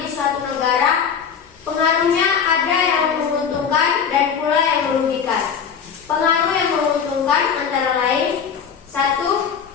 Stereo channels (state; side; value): quieter; right; 7.1 dB